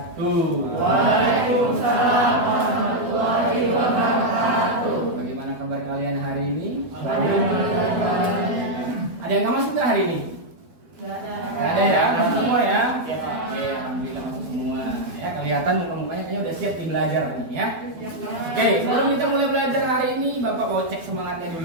Waalaikumsalam warahmatullahi wabarakatuh. Bagaimana kabar kalian hari ini? Bagaimana? Ada yang nggak masuk nggak hari ini? Nggak ada ya, masuk semua ya? Oke, alhamdulillah masuk semua. Ya, kelihatan muka-mukanya kayaknya udah siap belajar nih ya. Oke, sebelum kita mulai belajar hari ini, Bapak mau cek semangatnya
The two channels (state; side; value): late; left; 12 ms